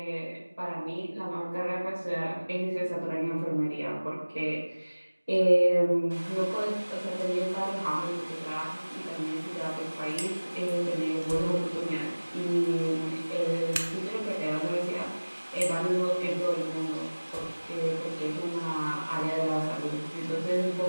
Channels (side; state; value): both; inverted; correlation -1.00